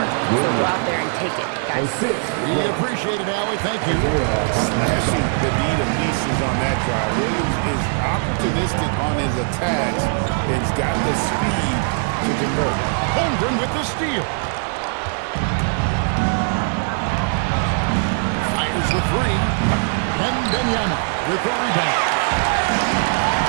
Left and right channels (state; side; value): silent; left; 58 dB below the other